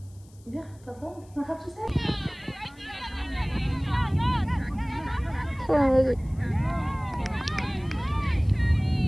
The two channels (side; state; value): left; noise; hiss, 29 dB below the sound